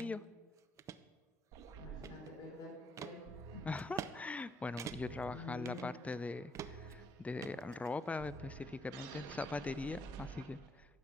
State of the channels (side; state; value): both; normal; correlation 0.73